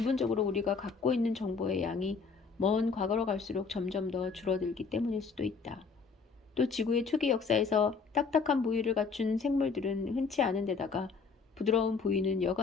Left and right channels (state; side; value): quieter; right; 5.0 dB